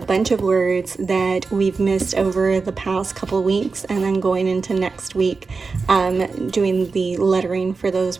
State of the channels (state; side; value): quieter; left; 4.5 dB